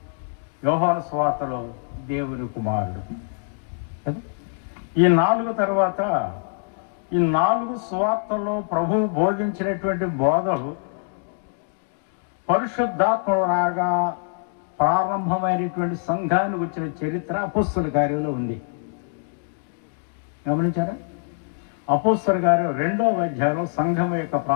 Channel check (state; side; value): silent; right; digital silence